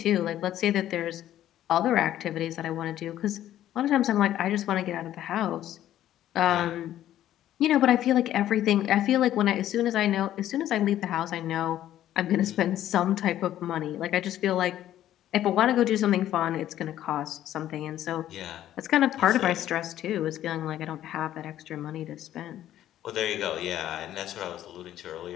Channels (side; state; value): right; quieter; 12.4 dB